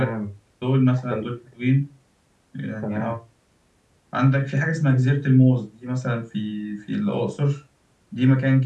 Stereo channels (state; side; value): identical; both; correlation 1.00